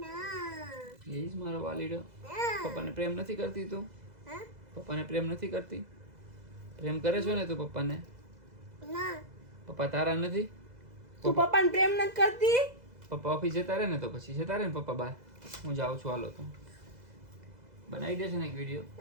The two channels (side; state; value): left; late; 2.0 ms